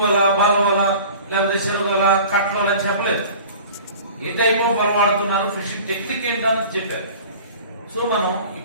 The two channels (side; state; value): both; inverted; correlation -0.42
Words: వల, బాల వల, లేకపోతే చెరువు వల, కట్ల వల అని చెప్పలేదు. ఏ టైప్ ఆఫ్ వల వాడుతున్నారు, ఫిషింగ్ టెక్నిక్ ఏంటని చెప్పారు. సో మనం